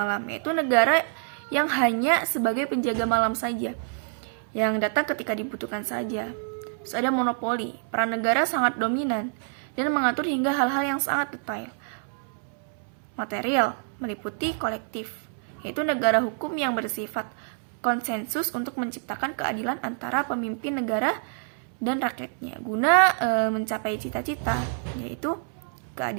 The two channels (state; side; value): silent; left; 60 dB below the other